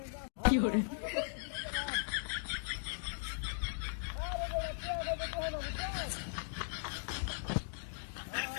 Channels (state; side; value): silent; right; digital silence